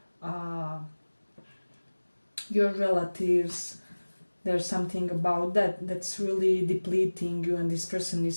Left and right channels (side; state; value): both; inverted; correlation -1.00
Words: your relatives. There's something about that that's really depleting you, and this person is